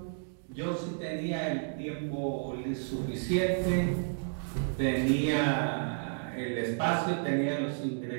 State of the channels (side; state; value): left; silent; digital silence